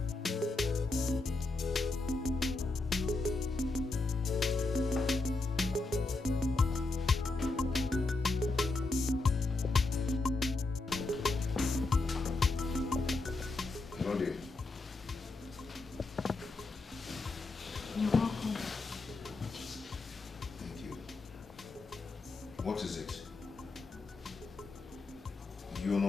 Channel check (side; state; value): right; quieter; 3.3 dB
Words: Love you. You're welcome. Thank you. What is it? You're